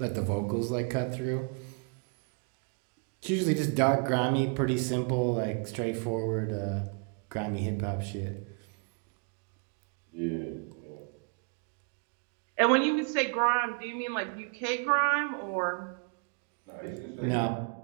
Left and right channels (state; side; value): quieter; left; 38.6 dB